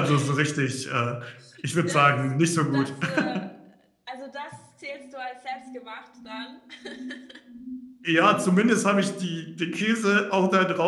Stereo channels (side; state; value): both; identical; correlation 1.00